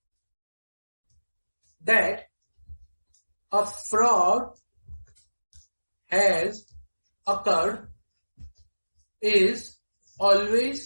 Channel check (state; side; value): inverted; both; correlation -1.00